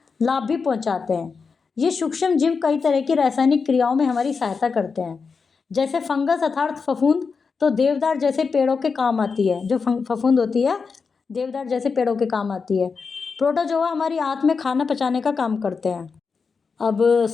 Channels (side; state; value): right; quieter; 5.1 dB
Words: लाभ भी पहुंचाते हैं। ये सूक्ष्म जीव कई तरह की रासायनिक क्रियाओं में हमारी सहायता करते हैं। जैसे फंगस अर्थात फफूंद तो देवदार जैसे पेड़ों के काम आती है। जो फफूंद होती है देवदार जैसे पेड़ों के काम आती है। प्रोटोजोआ हमारी आंत में खाना पचाने का काम करते हैं। अब